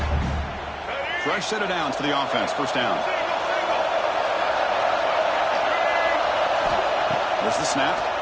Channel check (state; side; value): identical; both; correlation 1.00